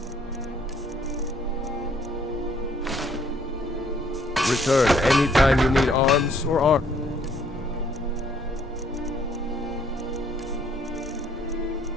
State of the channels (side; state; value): both; normal; correlation 0.64